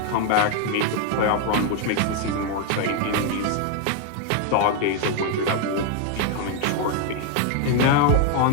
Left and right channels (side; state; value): both; different; correlation 0.00